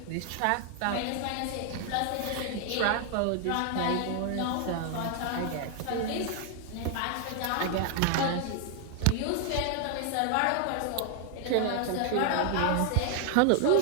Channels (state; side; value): different; both; correlation 0.00